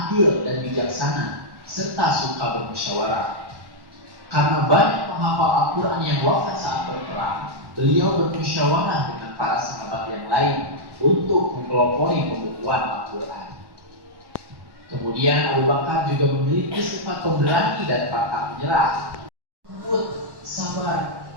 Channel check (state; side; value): late; left; 1.1 ms